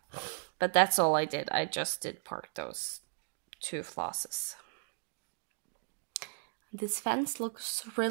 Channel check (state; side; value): silent; left; digital silence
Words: But that's all I did. I just did park those two flosses. This fence looks